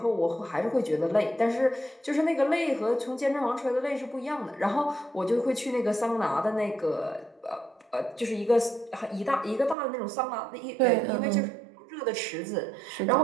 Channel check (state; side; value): drops out; left; at 9.8 s